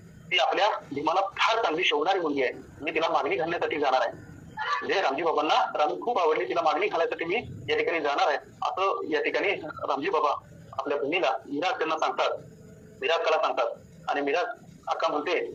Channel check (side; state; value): both; identical; correlation 1.00